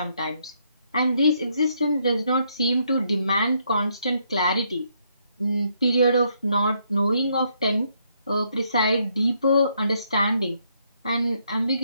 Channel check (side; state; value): both; inverted; correlation -0.73